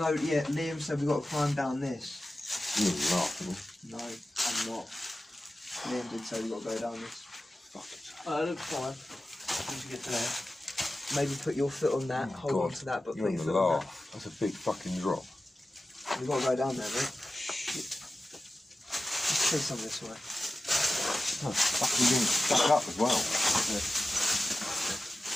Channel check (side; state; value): both; normal; correlation 0.94